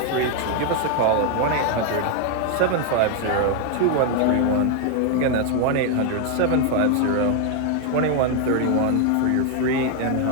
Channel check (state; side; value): different; both; correlation 0.01